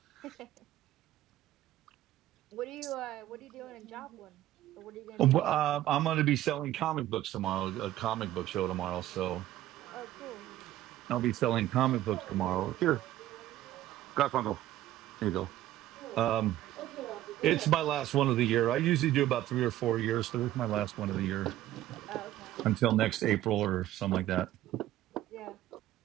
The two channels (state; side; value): quieter; left; 14.0 dB